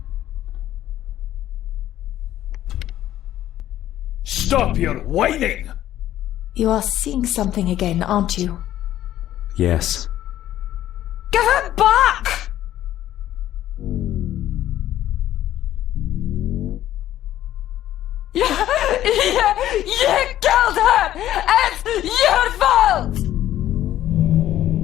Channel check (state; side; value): quieter; right; 12.8 dB